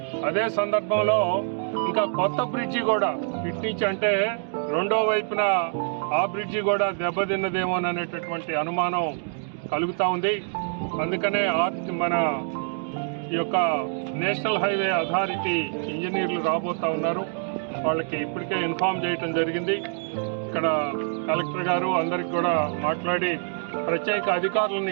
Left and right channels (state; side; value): silent; left; 60 dB below the other